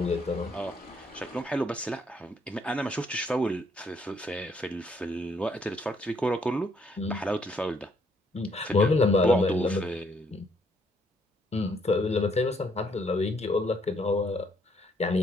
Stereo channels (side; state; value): both; normal; correlation 0.69